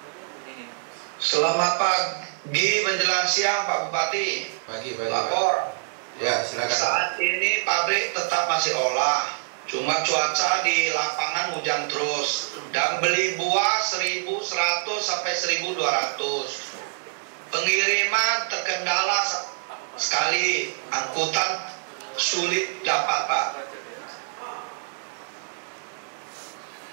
Selamat pagi menjelang siang Pak Bupati. Pagi. Lapor. Ya, silakan. Saat ini pabrik tetap masih olah. Cuma cuaca di lapangan hujan terus. Dan beli buah 1.100 sampai 1.200. Pengiriman terkendala sekali. Angkutan sulit dapat Pak.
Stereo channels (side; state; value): left; silent; digital silence